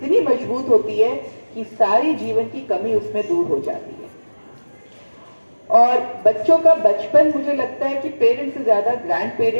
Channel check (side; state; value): both; inverted; correlation -1.00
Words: मजबूत होती है कि सारी जीवन की कमी उसमें दूर हो जाती है। और बच्चों का बचपन मुझे लगता है कि पेरेंट्स से ज्यादा ग्रैंड